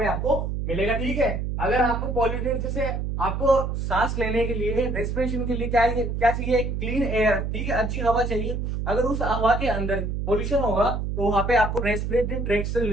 आपको मिलेगा। ठीक है, अगर आपको पॉल्यूटेड, जैसे आपको सांस लेने के लिए, रेस्पिरेशन के लिए क्या चाहिए, क्लीन एयर। ठीक है, अच्छी हवा चाहिए। अगर उस हवा के अंदर पोल्यूशन होगा तो वहां पे आपको रेस्पिरेटरी ट्रैक्ट से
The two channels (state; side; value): noise; right; hum, 2 dB below the sound